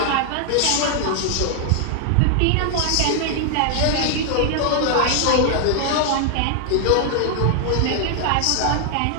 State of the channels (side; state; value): both; different; correlation 0.00